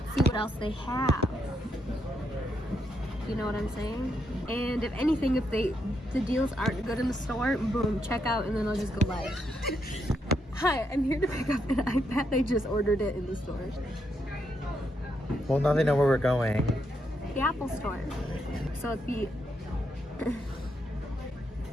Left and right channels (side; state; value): both; normal; correlation 0.79